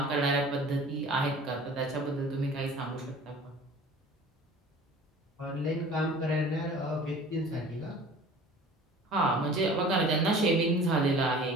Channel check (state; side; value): normal; both; correlation 0.45